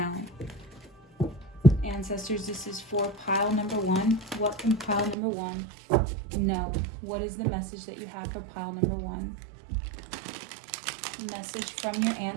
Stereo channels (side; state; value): left; drops out; at 5.2 s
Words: Ancestors, this is for pile number 1. What can pile number 1 know? What is the message that you have for pile number 1? Message from your